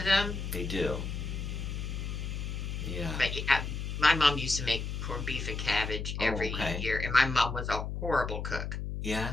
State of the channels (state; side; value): noise; left; hum, 4 dB below the sound